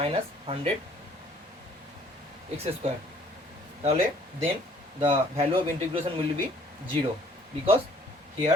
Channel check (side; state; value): both; normal; correlation 0.59